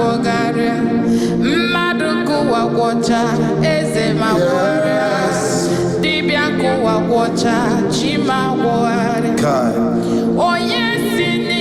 mmadụ nke ụwa gwọcha eze ma gwọrịa, dibịa nke ụwa gwọcha chima gwọgharịa. Onye si na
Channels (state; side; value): identical; both; correlation 1.00